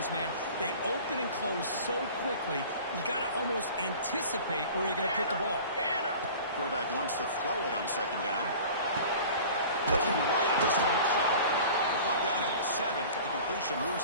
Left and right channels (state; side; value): inverted; both; correlation -0.41